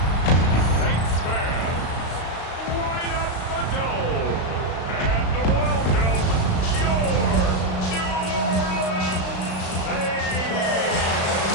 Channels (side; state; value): right; late; 35 ms